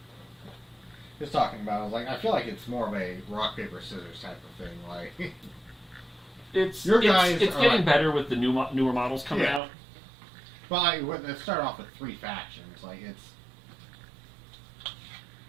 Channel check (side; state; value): left; drops out; at 9.6 s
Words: He was talking about. I was like, I feel like it's more of a rock paper scissors type of thing. Like it's your guys. It's getting better with the newer models coming out. Well, they start off with 3 factions. Like it's.